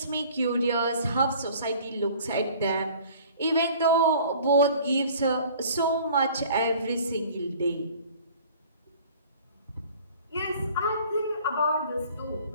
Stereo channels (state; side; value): inverted; both; correlation -0.49